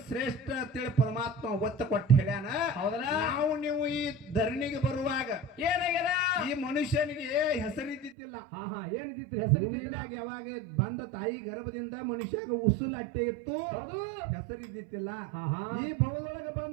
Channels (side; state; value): left; drops out; at 8.2 s